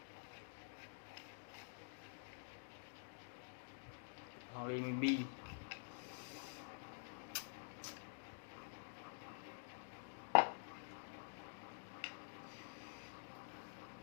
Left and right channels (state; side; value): silent; right; digital silence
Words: hong lê mùi mi